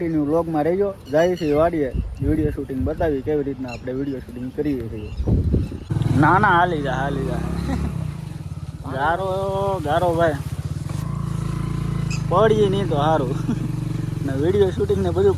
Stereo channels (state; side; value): identical; both; correlation 1.00